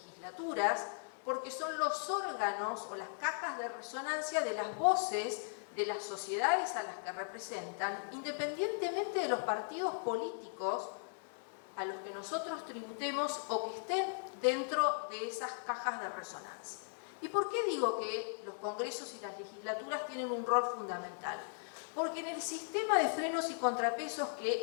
porque son los órganos o las cajas de resonancia de las voces de las sociedades a las que representan, independientemente de los partidos políticos a los que nosotros tributemos o que estén dentro de esas cajas de resonancia. ¿Y por qué digo que los congresos y las legislaturas tienen un rol fundamental? Porque en el sistema de frenos y contrapesos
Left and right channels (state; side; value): silent; right; digital silence